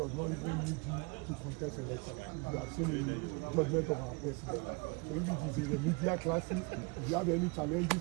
not even need you to contest election. You have seen a judgment of our president. So if it is a remedial crisis, if you have any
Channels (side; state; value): left; quieter; 29.5 dB